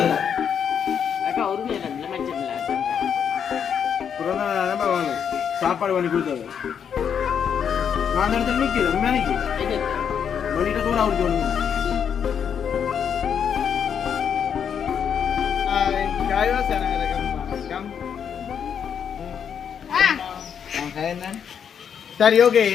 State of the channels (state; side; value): quieter; right; 7.8 dB